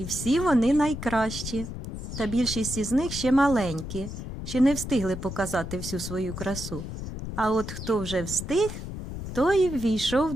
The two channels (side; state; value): left; noise; rumble, 8 dB below the sound